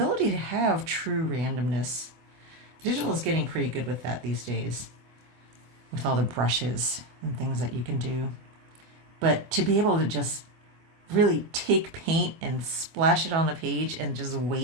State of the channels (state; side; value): late; left; 24 ms